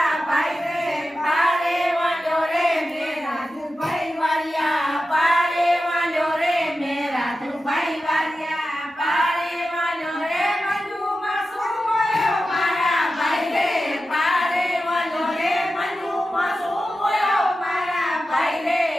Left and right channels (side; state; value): both; normal; correlation 0.92